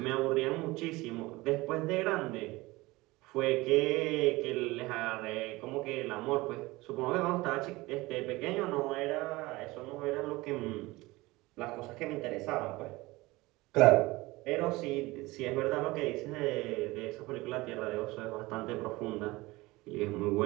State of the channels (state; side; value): quieter; left; 20.9 dB